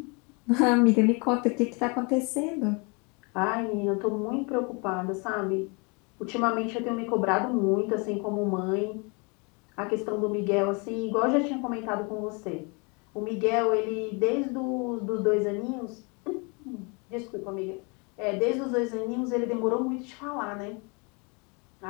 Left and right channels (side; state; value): right; quieter; 31.7 dB